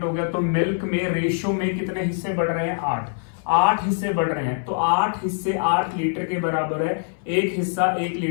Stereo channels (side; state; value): right; silent; 59 dB below the other